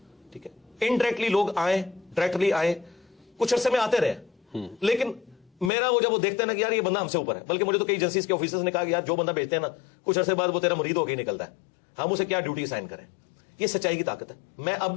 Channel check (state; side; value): drops out; right; at 5.7 s